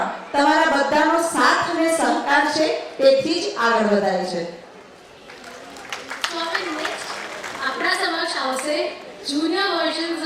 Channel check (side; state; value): both; identical; correlation 1.00